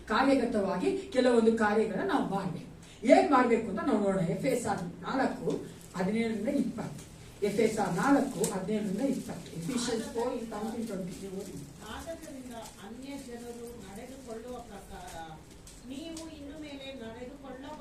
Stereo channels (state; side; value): identical; both; correlation 1.00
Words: ಕಾರ್ಯಗತವಾಗಿ ಕೆಲವೊಂದು ಕಾರ್ಯಗಳನ್ನ ನಾವು ಮಾಡಬೇಕು. ಏನ್ ಮಾಡ್ಬೇಕು ಅಂತ ನಾವು ನೋಡೋಣ. ಎಫೆಸರ್ 4:17-20. ಎಫೆಸರ್ 4:17-20. ಎಫಿಷಿಯನ್ಸ್ 4:19-20. ಆದ್ದರಿಂದ ಅನ್ಯ ಜನರು ನಡೆದುಕೊಳ್ಳುವ ಪ್ರಕಾರ ನೀವು ಇನ್ನು ಮೇಲೆ